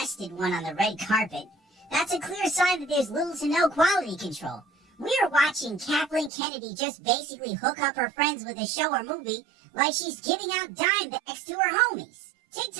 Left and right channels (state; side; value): drops out; left; at 6.3 s